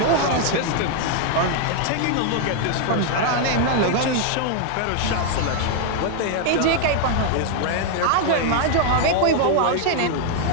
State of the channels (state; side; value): different; both; correlation 0.00